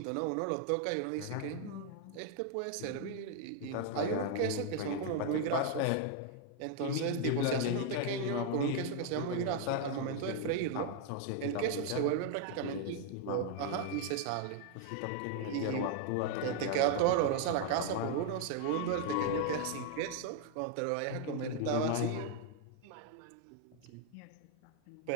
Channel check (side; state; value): both; different; correlation 0.00